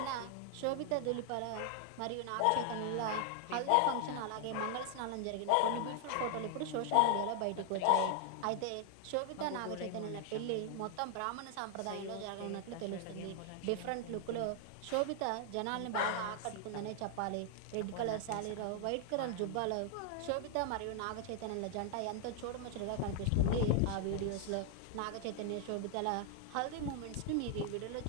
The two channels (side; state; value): both; different; correlation 0.00